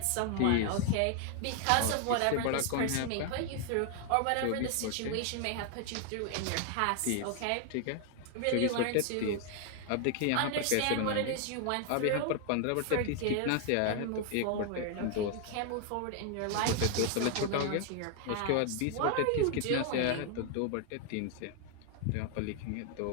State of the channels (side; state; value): both; different; correlation 0.00